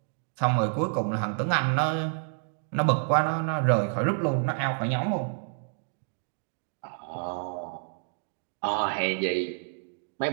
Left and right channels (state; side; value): silent; left; 58 dB below the other